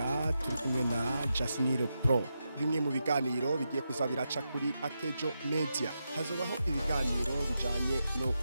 turi kumwe na Jasniro Pro. Bimwe mu biganiro bigiye kuzabiraca kuri Akejo Media hazobaho ibiganiro bijanye no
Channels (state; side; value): inverted; both; correlation -0.87